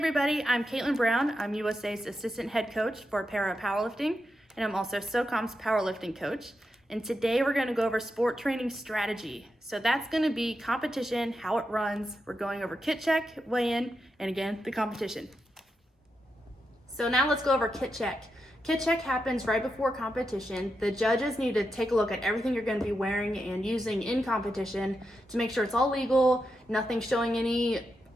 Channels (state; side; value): normal; both; correlation 0.86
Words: I'm Caitlin Brown. I'm USA's Assistant Head Coach for Para Powerlifting, and I'm also SOCOM's Powerlifting Coach. And today we're going to go over sport training strategy. So that's going to be competition, how it runs. We're going over kit check, weigh-in, and again, the competition. So now let's go over kit check. Kit check happens right before competition. The judges need to take a look at everything you're going to be wearing and using in competition to make sure it's all legal, nothing showing any